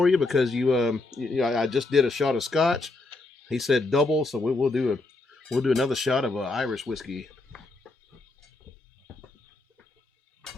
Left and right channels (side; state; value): right; quieter; 3.2 dB